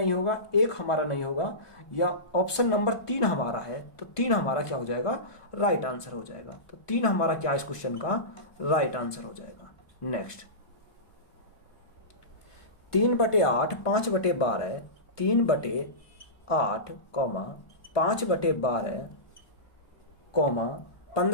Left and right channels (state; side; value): late; right; 1.5 ms